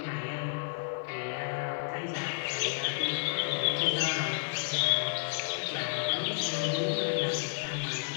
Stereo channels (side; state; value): right; silent; digital silence